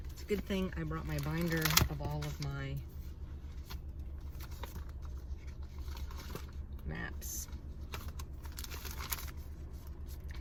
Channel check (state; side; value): identical; both; correlation 1.00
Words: it's a good thing I brought my binder of all of my maps.